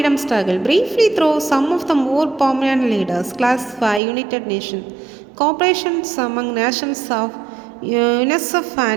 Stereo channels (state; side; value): drops out; left; at 4.0 s